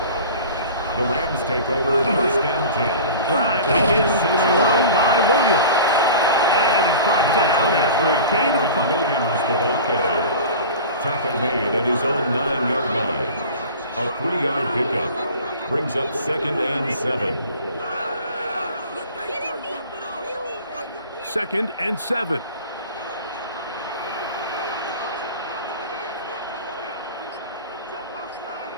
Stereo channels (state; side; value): inverted; both; correlation -0.39